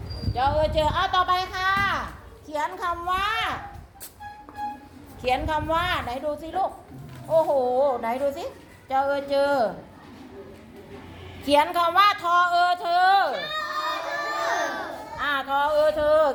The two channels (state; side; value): identical; both; correlation 1.00